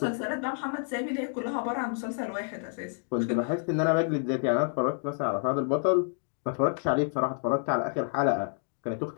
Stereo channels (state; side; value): silent; right; 59 dB below the other